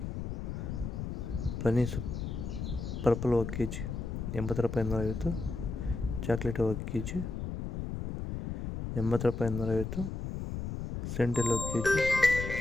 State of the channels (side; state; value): left; noise; rumble, 5 dB below the sound